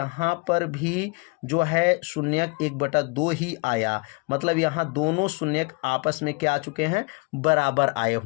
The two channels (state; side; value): quieter; right; 29.6 dB